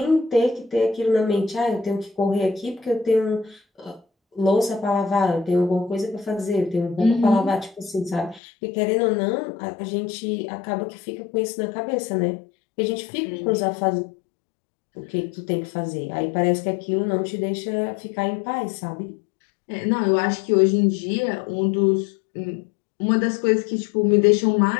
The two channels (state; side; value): drops out; right; at 8.4 s